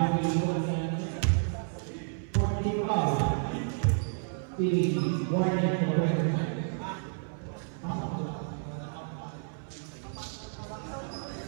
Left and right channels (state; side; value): silent; left; 57 dB below the other